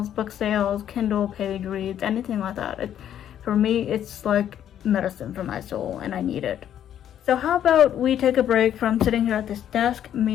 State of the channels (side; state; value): right; quieter; 10.3 dB